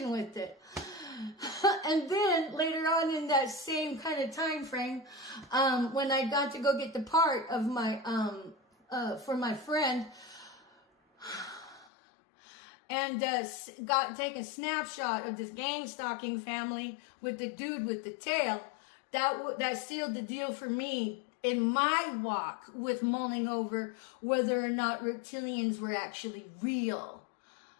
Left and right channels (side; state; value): right; drops out; at 11.9 s